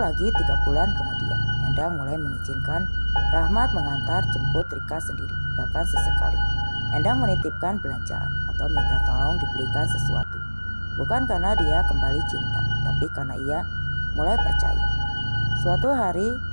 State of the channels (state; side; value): inverted; both; correlation -1.00